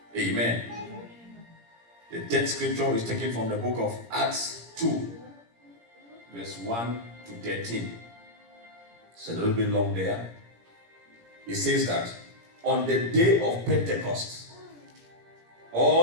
Amen. The 10th scripture is taken from the book of Acts 2, verse 1 to 13. It's a little bit long there. It says that on the day of Pentecost,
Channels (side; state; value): left; late; 17 ms